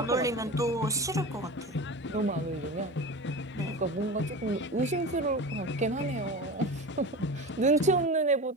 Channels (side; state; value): both; normal; correlation 0.30